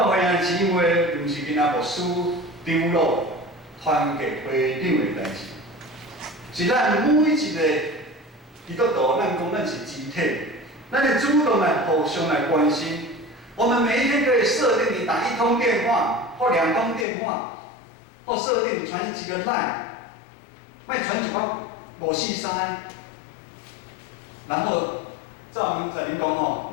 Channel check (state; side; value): drops out; right; at 17.1 s